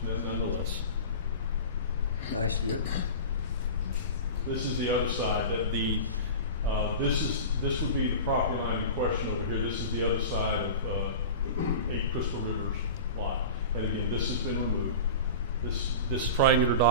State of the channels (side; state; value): both; inverted; correlation -0.31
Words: nonetheless. Nice view. This is the other side, that the, this would be the property line in question over here. This is the other side of, 8 Crystal River's lot. And again, this has been removed. This triangular